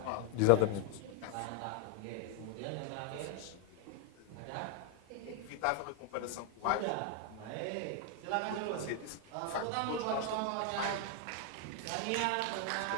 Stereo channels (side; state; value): both; different; correlation 0.00